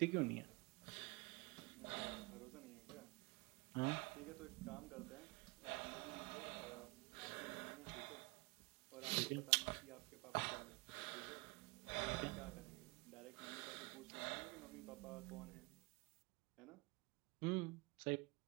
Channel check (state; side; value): quieter; left; 26.0 dB